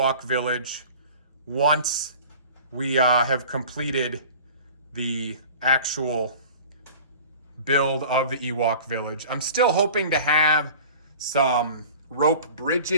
Village once we have completed the actual build of the Ewok Village. I'm still hoping to have some rope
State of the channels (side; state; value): both; inverted; correlation -0.42